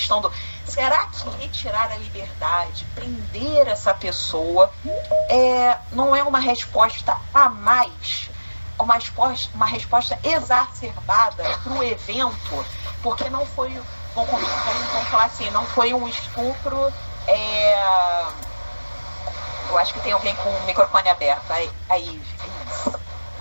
do será que retirar a liberdade, prender essa pessoa, não é uma resposta a mais, uma resposta exacerbada para o evento, porque não foi, vamos falar assim, não foi um estupro, eu acho que tem alguém com o microfone aberto, aí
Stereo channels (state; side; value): inverted; both; correlation -1.00